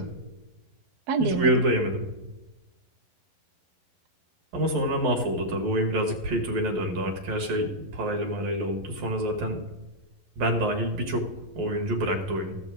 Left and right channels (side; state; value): left; late; 11 ms